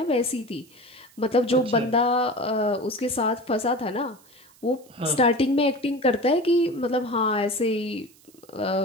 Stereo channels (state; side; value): noise; right; hiss, 28 dB below the sound